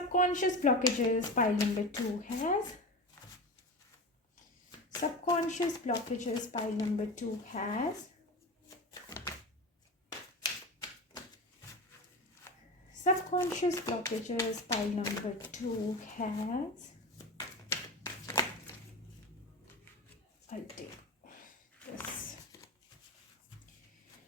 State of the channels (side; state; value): both; normal; correlation 0.26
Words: blockages, pile number 2 has. Subconscious blockages, pile number 2 has. Subconscious blockages, pile number 2 has. I'll take this.